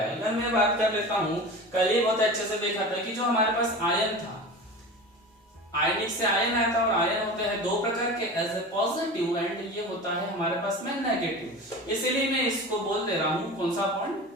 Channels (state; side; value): normal; both; correlation 0.32